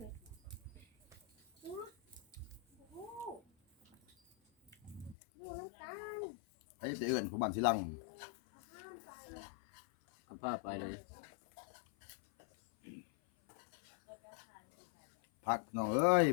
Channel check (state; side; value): drops out; right; at 5.2 s